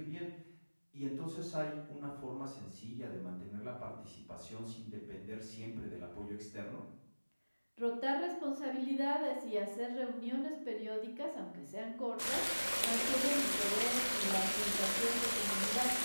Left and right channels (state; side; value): inverted; both; correlation -1.00